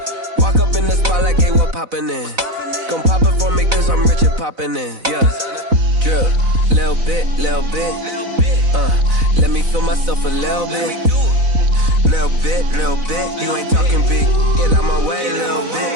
Walk up in the spot like, hey, what poppin' in? Gon' pop it for me cause I'm rich and poppin' in, yeah. Drip, little bit, let me feel myself a little bit. Little bit, you ain't talking big. Get out my way, little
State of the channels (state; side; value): late; left; 4.0 ms